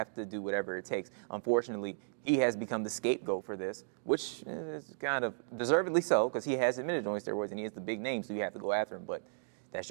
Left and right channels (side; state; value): left; silent; digital silence